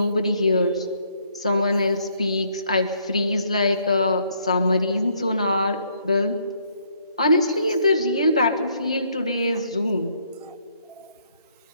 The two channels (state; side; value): inverted; both; correlation -0.69